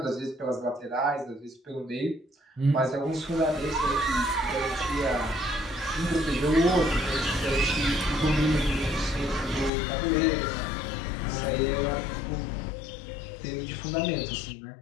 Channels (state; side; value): drops out; right; at 9.7 s